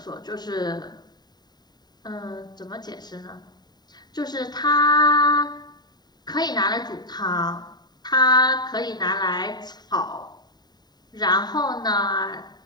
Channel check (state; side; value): late; right; 0.20 ms